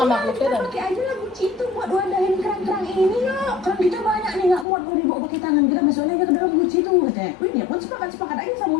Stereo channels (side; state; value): right; drops out; at 4.7 s